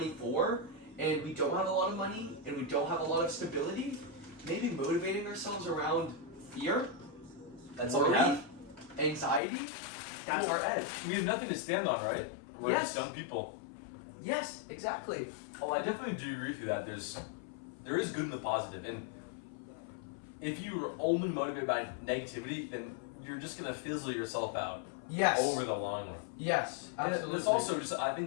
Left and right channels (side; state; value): right; drops out; at 9.4 s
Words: and we don't have a lot of money, and we don't have a lot of stability, maybe motivating ourselves around fear, That's all we have. anxiety, that's our edge. We have nothing to stand on, right? We're Yes. just young people. Yes, exactly. Oh, I definitely do agree with you that there is good in the positive, and if you are only motivated by negativity, then you're just gonna fizzle yourself out Yes. over the long run. Yes, absolutely. And it's also just, I